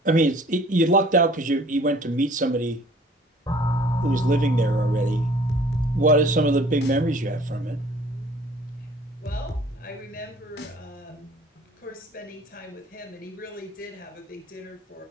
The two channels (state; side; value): normal; both; correlation 0.53